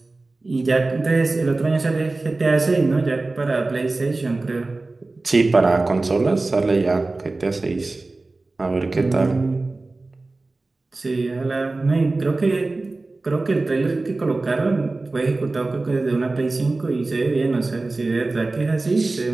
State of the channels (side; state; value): left; quieter; 3.3 dB